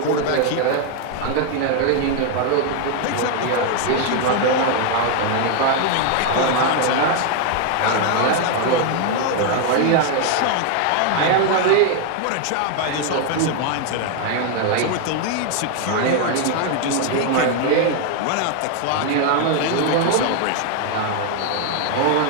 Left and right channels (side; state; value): both; different; correlation 0.01